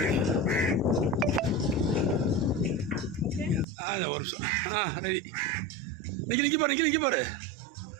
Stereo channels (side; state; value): left; drops out; at 3.7 s